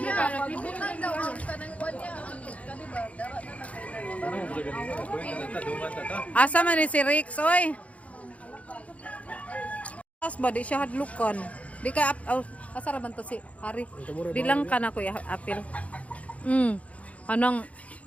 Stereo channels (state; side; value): late; right; 0.066 ms